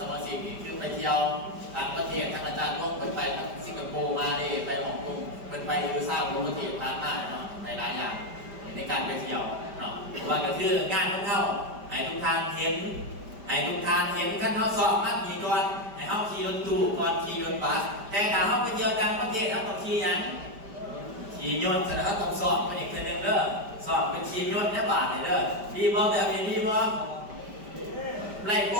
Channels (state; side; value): late; left; 5.1 ms